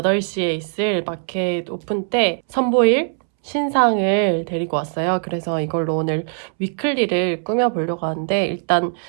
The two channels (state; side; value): silent; left; 65 dB below the other